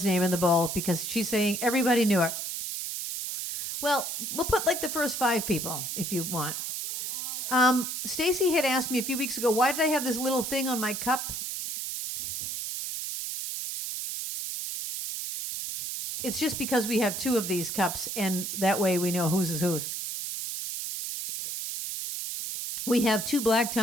name in the bowl because she's saying everybody knew it. Well, we'll put like the first 5 people if you want. Stacy had asked me a few weeks ago, why did I have this little thing on my cup? It's just because we have 2 of these cups, and that way we know whose is whose. We have 2 black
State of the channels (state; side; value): noise; right; hiss, 4 dB below the sound